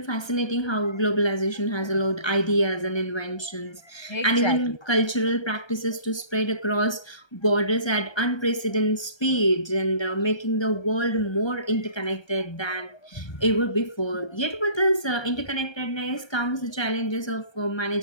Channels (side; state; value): right; late; 1.3 ms